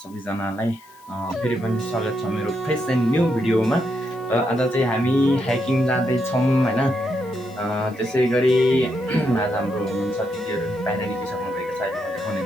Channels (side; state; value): left; noise; hiss, 27 dB below the sound